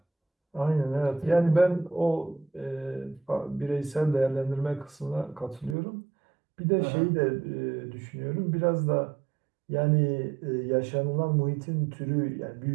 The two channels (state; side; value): drops out; left; at 5.8 s